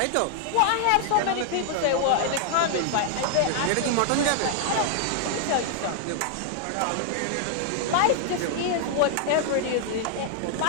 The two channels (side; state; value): both; different; correlation 0.00